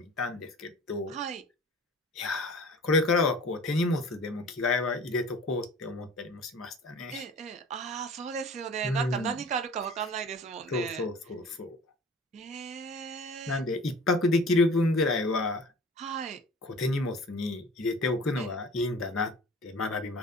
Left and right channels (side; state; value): both; normal; correlation 0.43